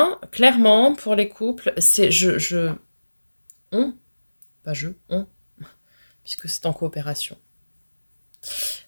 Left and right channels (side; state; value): both; inverted; correlation -1.00